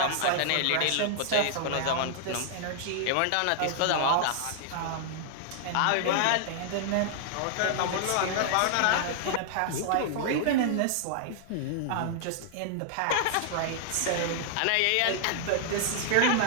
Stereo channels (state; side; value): different; both; correlation -0.01